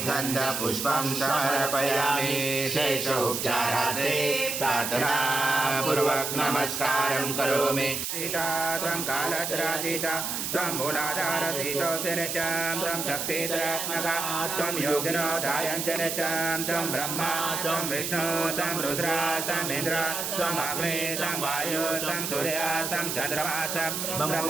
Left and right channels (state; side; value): noise; right; hiss, 3 dB below the sound